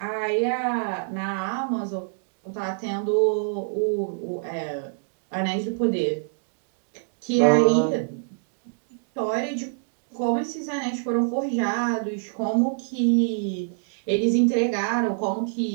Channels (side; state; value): left; silent; digital silence